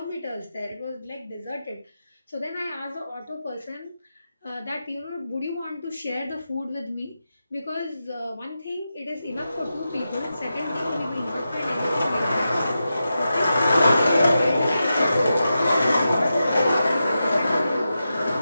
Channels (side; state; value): both; inverted; correlation -0.90